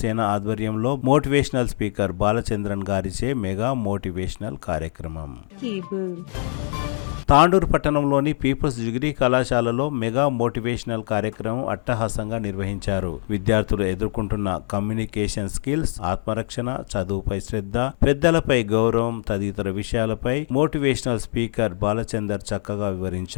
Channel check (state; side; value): silent; right; 63 dB below the other